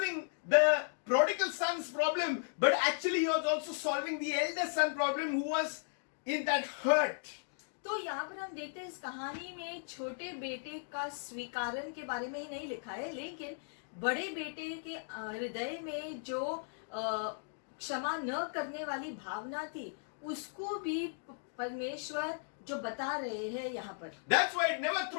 the prodigal son's problem, but actually he was also solving the elder son problem who was in that hurt. तो यहाँ पर हम देखते हैं इस कहानी में छोटे बेटे का स्वीकारण के बारे में ही नहीं लिखा है, लेकिन बड़े बेटे के हृदय में जो क्षमा न करने वाली भावना थी उसको भी परमेश्वर जो बता रहे हैं यहाँ पर। That's why never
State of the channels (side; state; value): right; silent; digital silence